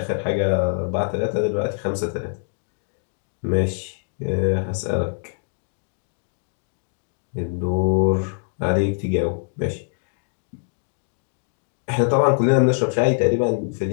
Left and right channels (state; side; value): silent; right; digital silence